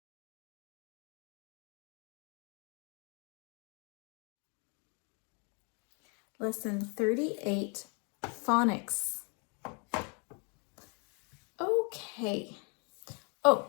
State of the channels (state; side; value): quieter; right; 34.9 dB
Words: Lesson 38, Phonics. Okay.